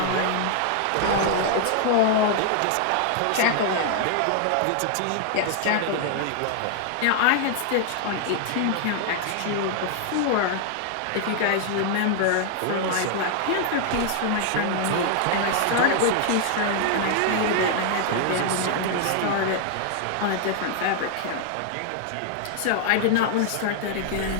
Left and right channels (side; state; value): both; different; correlation 0.00